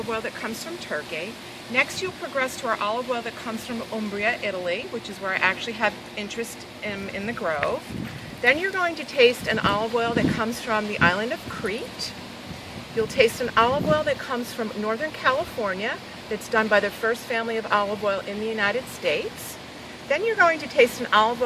oil that comes from Turkey. Next, you'll progress to our olive oil that comes from Umbria, Italy, which is where I actually have interest in the Grove. Then you're going to taste an olive oil that comes from the island of Crete. You'll taste an olive oil that comes from Northern California, that's done by the first family of olive oil in the United States. Then you're going to taste an olive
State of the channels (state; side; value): identical; both; correlation 1.00